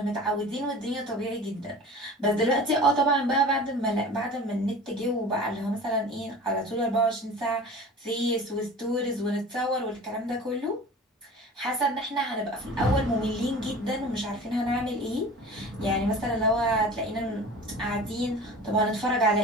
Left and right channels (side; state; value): both; normal; correlation 0.39